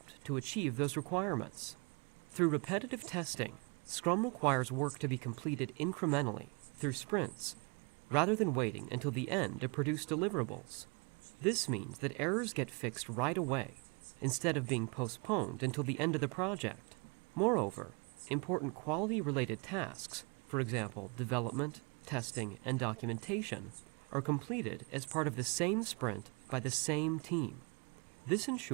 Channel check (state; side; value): quieter; left; 32.8 dB